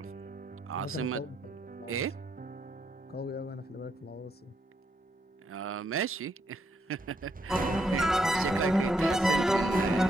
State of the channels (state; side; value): normal; both; correlation 0.77